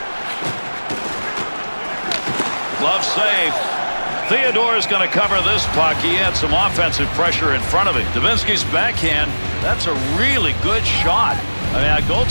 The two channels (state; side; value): inverted; both; correlation -1.00